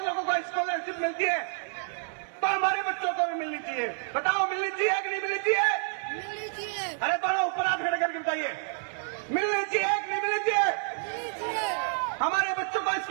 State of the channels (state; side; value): silent; left; 59 dB below the other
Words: लोगों को स्कॉलरशिप मिलती है, तो हमारे बच्चों को भी मिलनी चाहिए। बताओ मिलनी चाहिए कि नहीं मिलनी चाहिए? मिलनी चाहिए। अरे दोनों ऊपर हाथ खड़े करके बताइए, मिलनी चाहिए कि नहीं मिलनी चाहिए? मिलनी चाहिए। हमारे बच्चों को